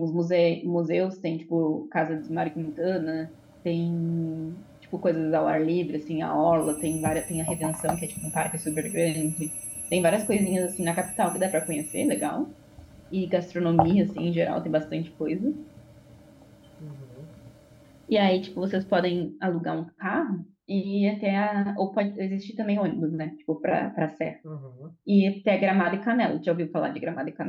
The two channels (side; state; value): both; identical; correlation 1.00